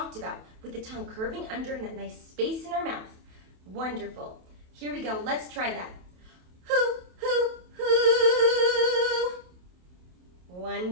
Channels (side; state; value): left; late; 28 ms